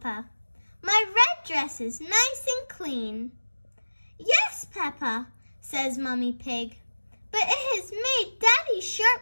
My red dress is nice and clean. Yes, Peppa, says Mummy Pig, but it has made Daddy's shirt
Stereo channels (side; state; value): both; inverted; correlation -1.00